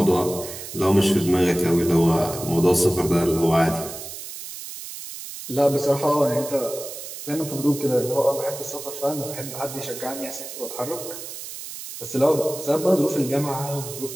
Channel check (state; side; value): noise; right; hiss, 10 dB below the sound